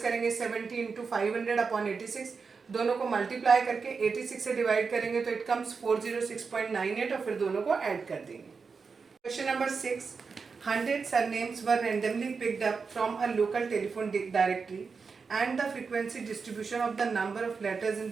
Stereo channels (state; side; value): quieter; left; 5.1 dB